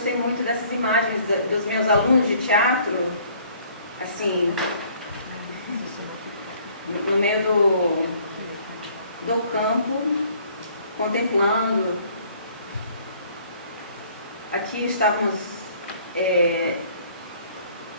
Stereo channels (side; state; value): both; inverted; correlation -0.59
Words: muito dessas imagens dos meus alunos de teatro, assim, no meio do campo, contemplando. Aqui estávamos